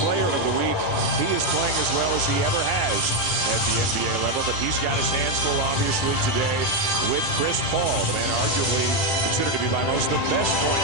Player of the Week. He is playing as well as he ever has at the NBA level, but he's got his hands full, obviously, today with Chris Paul, the man arguably considered to be by most the best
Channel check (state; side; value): normal; both; correlation 0.04